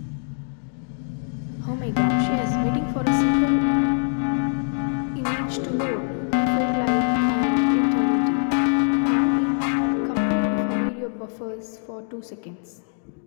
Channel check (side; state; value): right; silent; 63 dB below the other